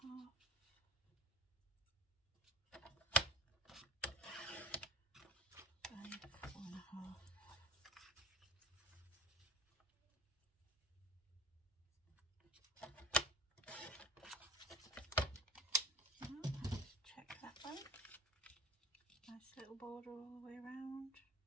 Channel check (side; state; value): both; normal; correlation 0.37